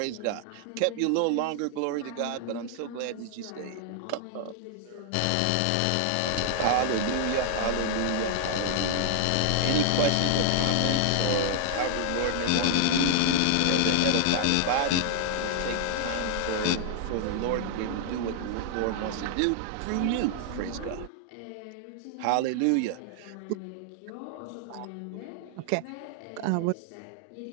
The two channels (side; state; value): both; different; correlation 0.00